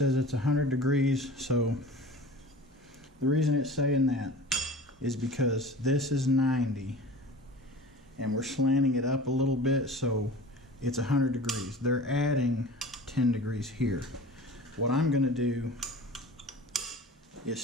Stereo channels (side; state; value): both; normal; correlation 0.39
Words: it's 100 degrees, so the reason it's saying that is because this is 90 and we're slanting it up a little bit, so it's 100 degrees. They're adding 10 degrees here. What I'm going to do is